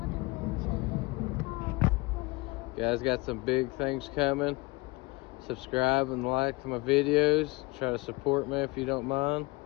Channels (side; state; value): right; quieter; 23.9 dB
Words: Guys, got some big things coming. Subscribe and like my videos. Try to support me if you don't mind.